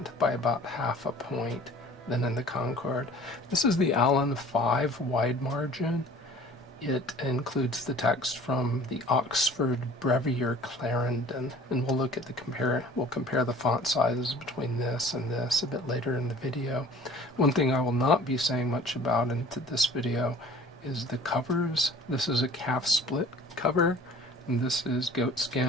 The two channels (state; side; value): normal; both; correlation 0.48